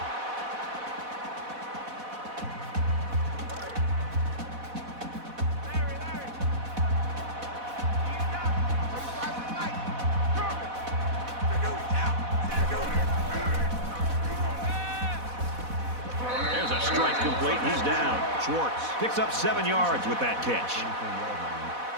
There's a strike complete. He's down. Schwartz picks up 7 yards with that catch.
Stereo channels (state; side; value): late; left; 4.1 ms